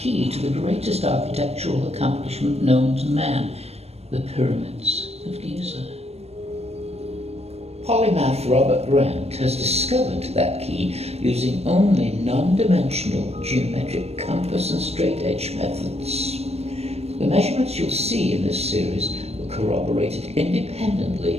to the greatest architectural accomplishment known to man, the pyramids of Giza. Polymath Robert Grant has discovered that key using only non-dimensional geometric compass and straight-edge methods. The measurements you'll see in this series were corroborated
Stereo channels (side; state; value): left; late; 0.30 ms